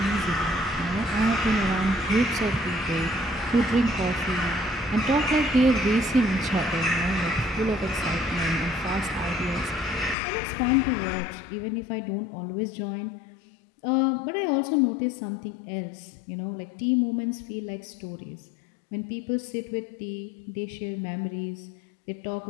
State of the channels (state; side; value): drops out; right; at 10.2 s